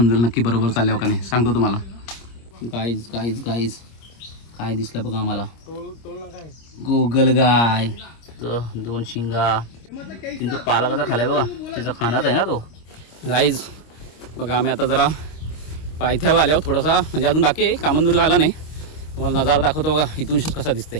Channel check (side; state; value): right; late; 26 ms